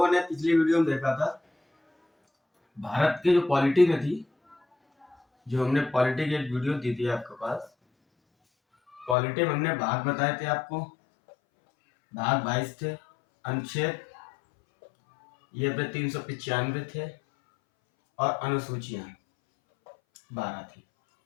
ने पिछली वीडियो में देखा था भारत के जो पॉलिटी में थी, जो हमने पॉलिटी की एक वीडियो दी थी आपके पास। पॉलिटी में हमने भाग बताए थे आपको, भाग 22 थे, अनुच्छेद ये पे 395 थे और अनुसूचियां 12 थी।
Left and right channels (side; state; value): right; drops out; at 9.2 s